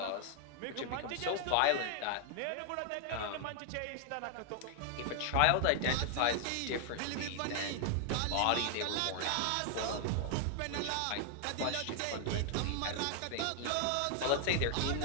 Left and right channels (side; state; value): both; different; correlation 0.00